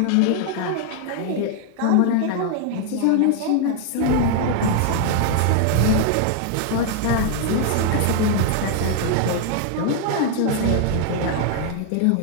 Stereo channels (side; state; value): both; different; correlation 0.00